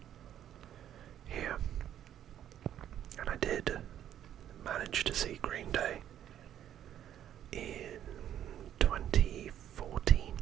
here. And I did manage to see Green Day in 2014,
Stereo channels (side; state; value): left; quieter; 10.7 dB